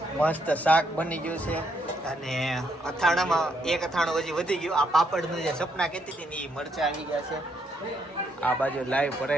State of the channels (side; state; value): both; normal; correlation 0.74